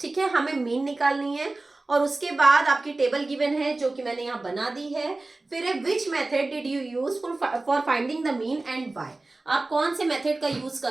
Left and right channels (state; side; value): quieter; left; 3.1 dB